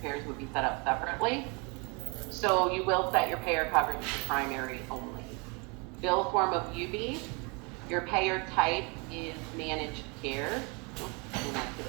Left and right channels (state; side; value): quieter; left; 31.1 dB